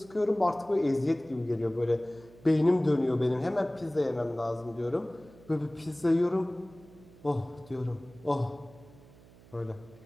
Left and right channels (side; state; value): right; noise; hum, 23 dB below the sound